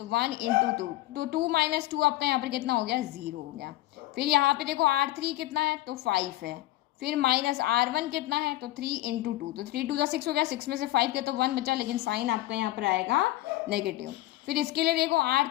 1 इंटू 2, तो 2 माइनस 2 आपका यहाँ पर कितना हो गया 0 हो गया। फिर यहाँ पे देखो R3 कितना है, तो 5 है, फिर माइनस R1 कितना है, तो 3 इंटू 2, तो 3 2 6 हो गया, 6 में से 5 के तो 1 बचा, लेकिन साइन आपका यहाँ पर आएगा नेगेटिव। फिर इसके लिए देखो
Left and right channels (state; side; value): quieter; right; 16.7 dB